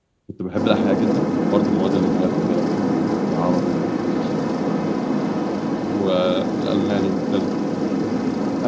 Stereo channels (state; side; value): identical; both; correlation 1.00